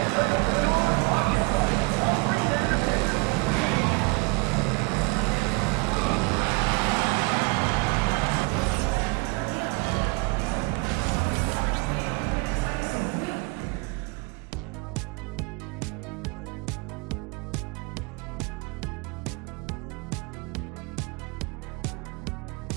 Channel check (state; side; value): quieter; left; 28.6 dB